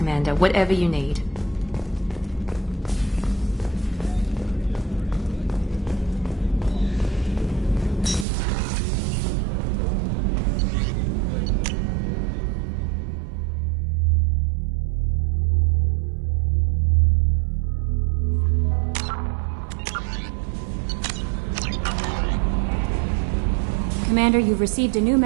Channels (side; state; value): left; drops out; at 8.2 s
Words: Whatever you need. Commander, you've received a new